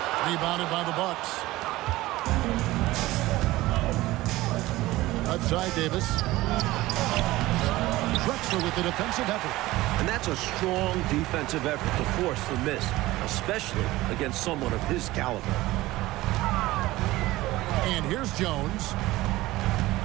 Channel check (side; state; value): left; quieter; 18.0 dB